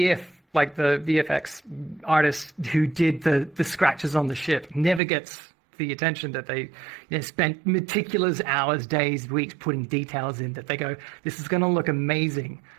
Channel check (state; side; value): drops out; left; at 5.0 s